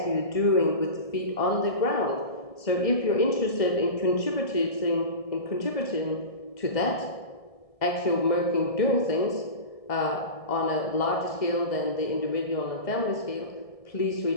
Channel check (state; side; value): late; right; 1.7 ms